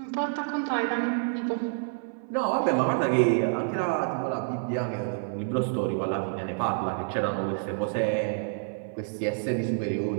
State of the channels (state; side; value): silent; left; 55 dB below the other